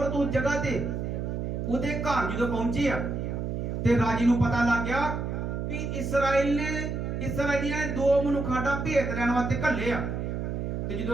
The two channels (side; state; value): right; noise; hum, 3 dB below the sound